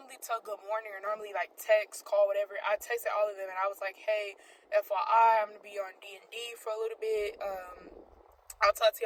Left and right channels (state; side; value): identical; both; correlation 1.00